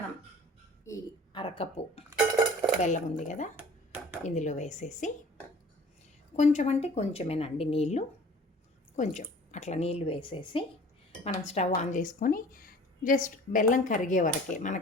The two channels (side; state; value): both; normal; correlation 0.47